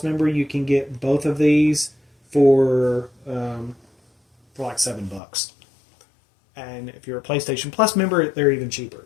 member, you can get both of these for like $7. And if you're a PlayStation Plus member, they're even cheaper.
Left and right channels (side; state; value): right; drops out; at 5.2 s